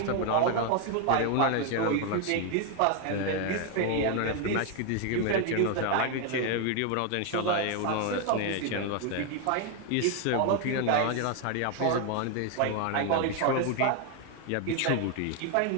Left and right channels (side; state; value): both; different; correlation 0.01